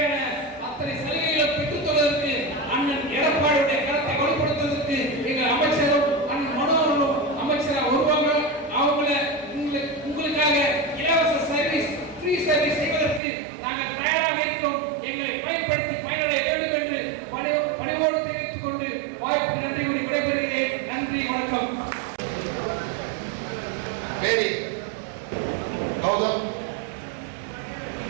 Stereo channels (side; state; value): left; drops out; at 13.2 s